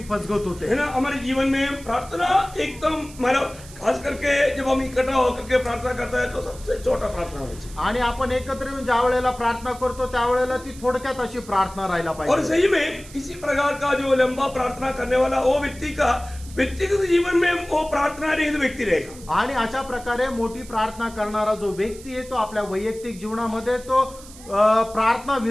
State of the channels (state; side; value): noise; right; hiss, 19 dB below the sound